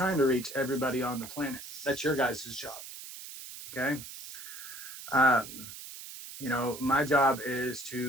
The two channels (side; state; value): right; noise; hiss, 12 dB below the sound